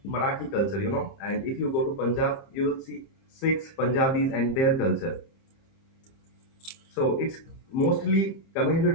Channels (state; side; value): late; right; 30 ms